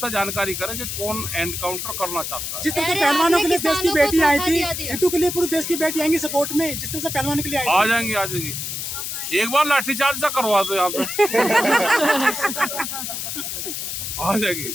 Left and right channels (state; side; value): noise; left; hiss, 5 dB below the sound